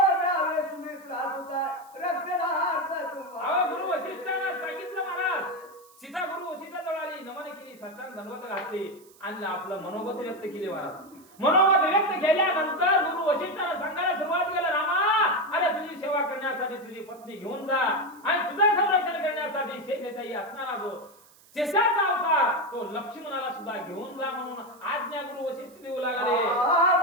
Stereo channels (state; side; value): noise; right; hiss, 27 dB below the sound